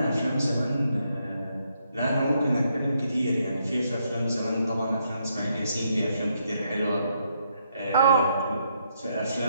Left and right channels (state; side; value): inverted; both; correlation -0.76